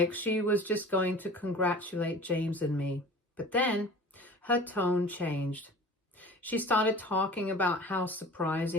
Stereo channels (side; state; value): both; normal; correlation 0.41